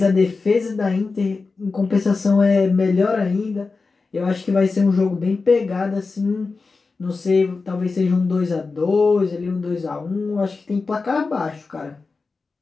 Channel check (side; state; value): right; quieter; 4.2 dB